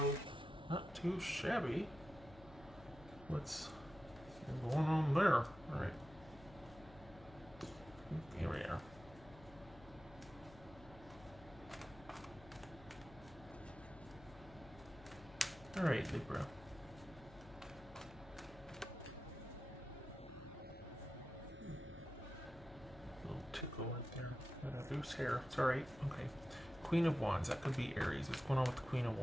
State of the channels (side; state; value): left; noise; hum, 19 dB below the sound